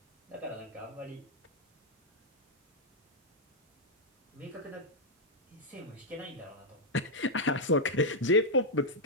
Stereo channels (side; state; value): both; normal; correlation -0.02